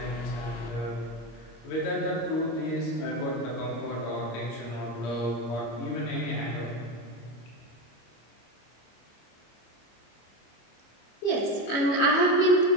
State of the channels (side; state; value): right; late; 25 ms